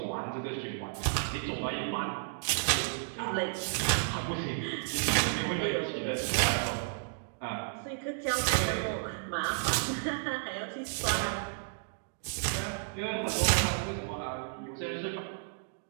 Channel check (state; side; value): silent; left; digital silence